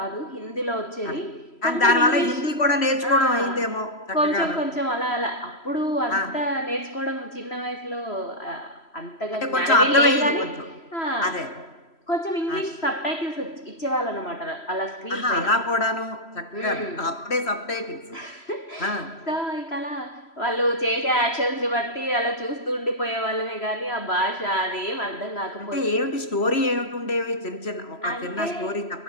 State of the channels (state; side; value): late; right; 3.0 ms